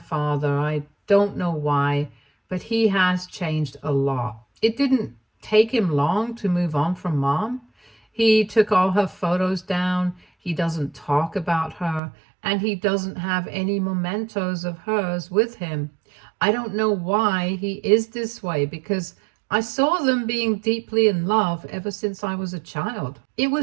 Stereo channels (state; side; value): drops out; left; at 12.0 s